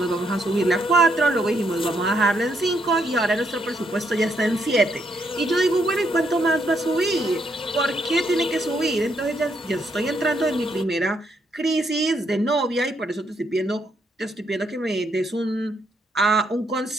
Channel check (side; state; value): both; normal; correlation 0.75